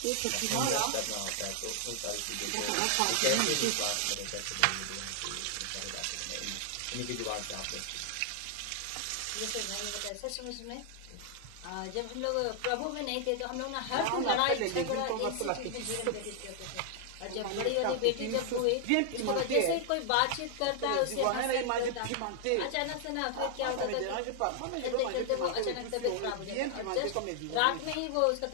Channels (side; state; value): both; different; correlation 0.00